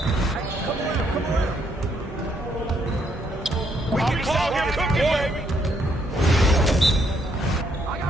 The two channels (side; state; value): both; normal; correlation 0.71